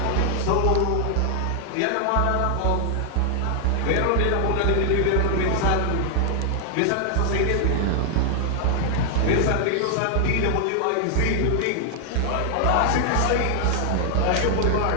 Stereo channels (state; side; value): different; both; correlation 0.00